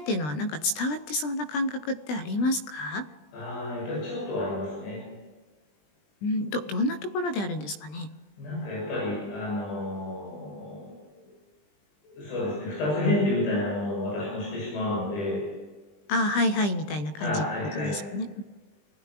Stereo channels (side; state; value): right; late; 20 ms